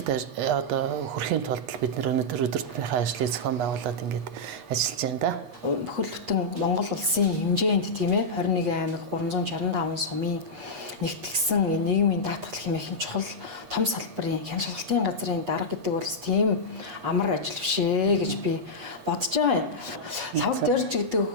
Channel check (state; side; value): late; left; 8.2 ms